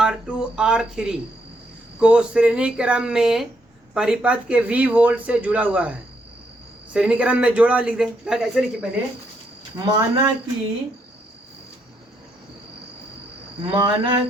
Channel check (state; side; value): normal; both; correlation 0.75